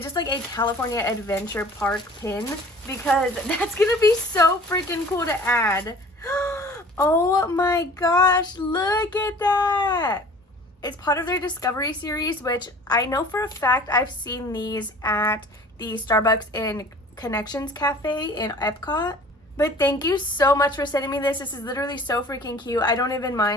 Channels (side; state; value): both; normal; correlation 0.47